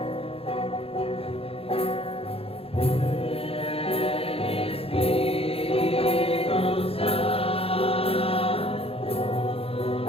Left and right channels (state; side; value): late; right; 0.28 ms